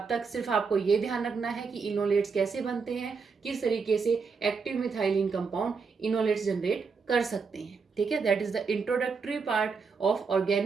तक सिर्फ आपको ये ध्यान रखना है कि इनोलेट्स कैसे बनते हैं, किस तरीके से active methylene compound enolates generate कर सकते हैं। ठीक है, that is the introductory part of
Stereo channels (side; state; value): left; quieter; 5.1 dB